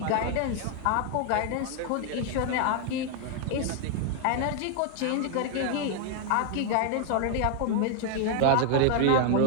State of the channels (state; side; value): different; both; correlation 0.00